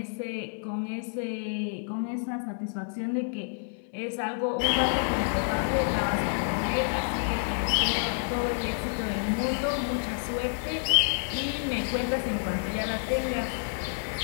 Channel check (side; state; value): right; silent; 58 dB below the other